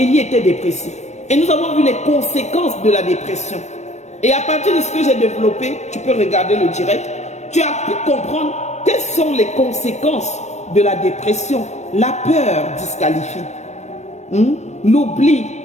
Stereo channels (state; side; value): late; right; 0.33 ms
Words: était dépressif. Et nous avons vu les conséquences de la dépression. Et à partir de ce que j'ai développé, tu peux regarder le direct, tu as pu comprendre quelles sont les conséquences de la dépression. La peur disqualifie. L'oubli